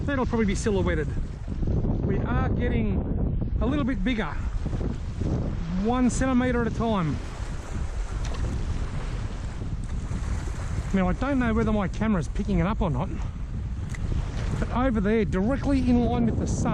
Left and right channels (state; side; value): identical; both; correlation 1.00